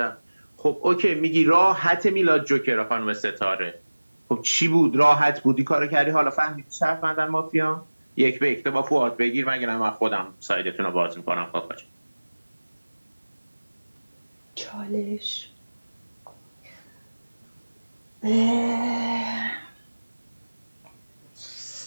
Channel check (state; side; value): inverted; both; correlation -1.00